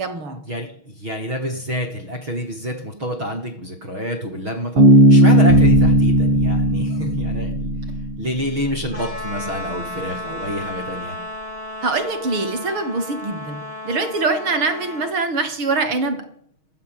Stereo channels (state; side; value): late; left; 6.3 ms